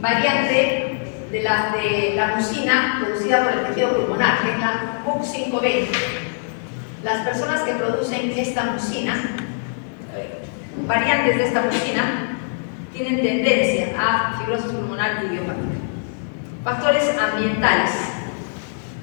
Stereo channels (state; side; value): silent; right; 64 dB below the other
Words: de la mucina producida por el tejido pulmonar, que es la MUC5B. Las personas que producen esta mucina, variantes de esta mucina, tienen tendencia a fibrosis pulmonar idiopática. Factores ambientales: